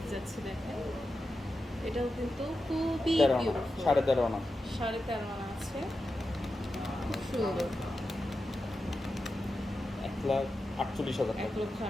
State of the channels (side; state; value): both; normal; correlation 0.90